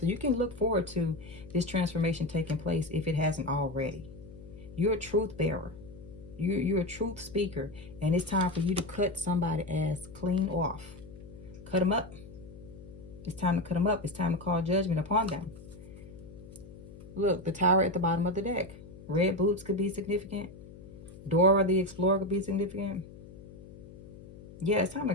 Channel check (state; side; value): noise; left; hum, 17 dB below the sound